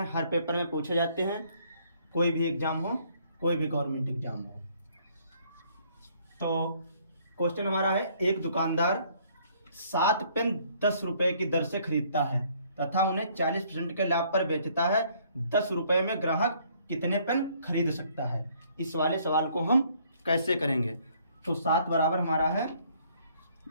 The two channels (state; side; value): inverted; both; correlation -0.63